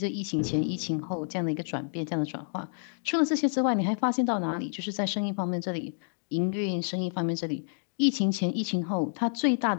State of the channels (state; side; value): silent; right; digital silence